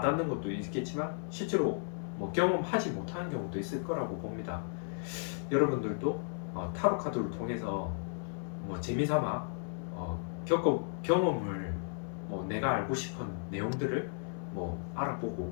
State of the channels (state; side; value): silent; right; 55 dB below the other